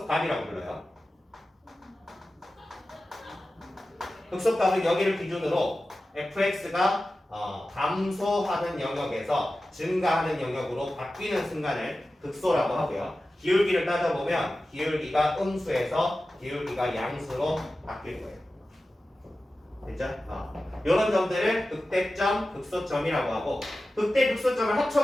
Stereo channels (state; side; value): normal; both; correlation 0.94